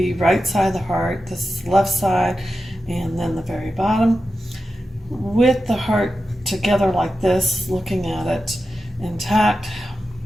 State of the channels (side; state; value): both; normal; correlation 0.91